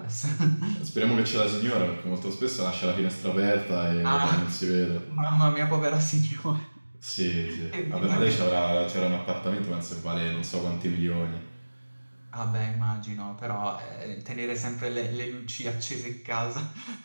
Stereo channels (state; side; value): inverted; both; correlation -1.00